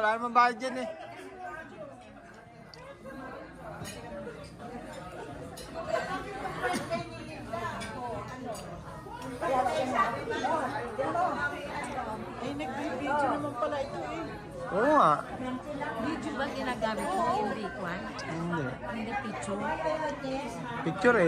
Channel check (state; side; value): identical; both; correlation 1.00